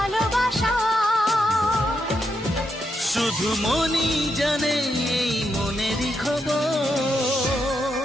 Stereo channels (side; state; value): both; normal; correlation 0.82